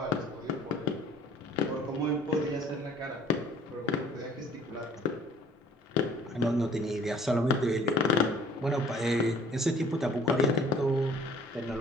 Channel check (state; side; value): normal; both; correlation 0.54